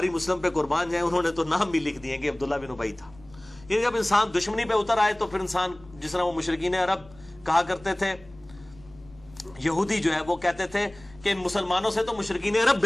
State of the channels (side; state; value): left; noise; rumble, 24 dB below the sound